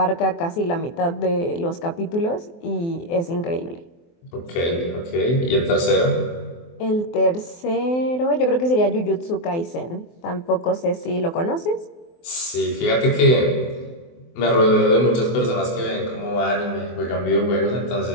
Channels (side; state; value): right; late; 24 ms